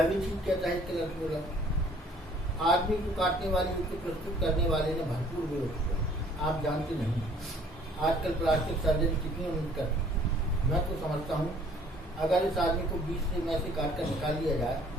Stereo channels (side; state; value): both; normal; correlation 0.57